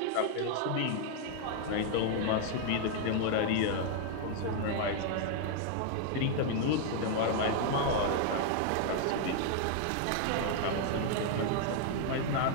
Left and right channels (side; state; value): both; different; correlation 0.00